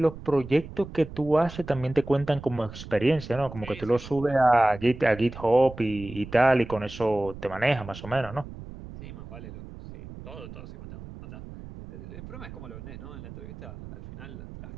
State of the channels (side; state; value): right; noise; rumble, 14 dB below the sound